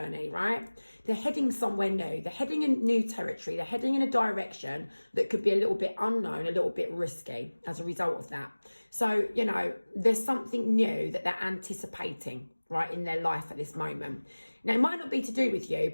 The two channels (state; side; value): inverted; both; correlation -1.00